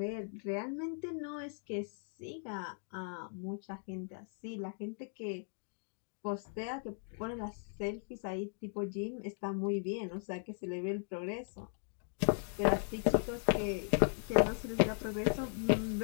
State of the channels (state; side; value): silent; right; 53 dB below the other